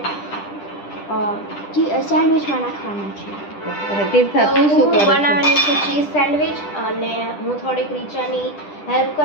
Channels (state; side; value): late; right; 10 ms